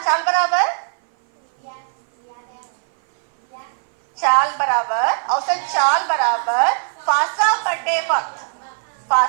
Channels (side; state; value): left; silent; 58 dB below the other